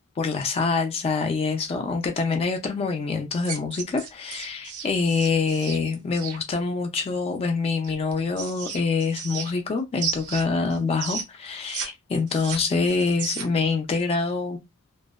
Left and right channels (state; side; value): quieter; right; 3.5 dB